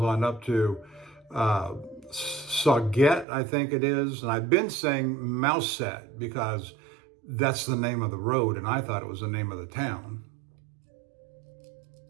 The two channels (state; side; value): drops out; left; at 3.2 s